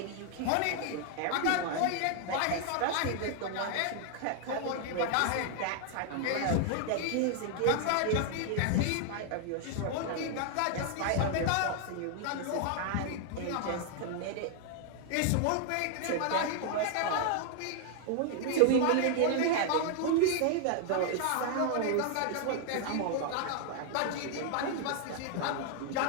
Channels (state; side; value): different; both; correlation 0.00